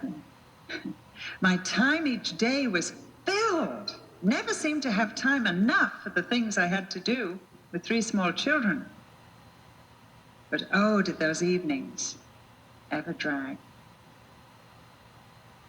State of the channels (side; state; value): both; identical; correlation 1.00